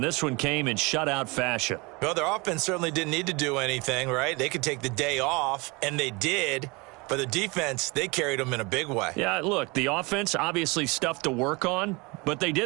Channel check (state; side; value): quieter; left; 26.3 dB